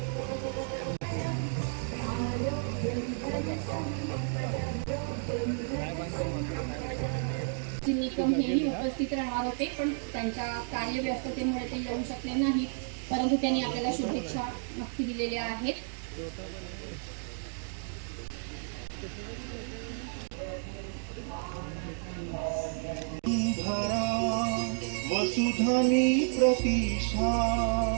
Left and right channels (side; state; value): left; silent; 57 dB below the other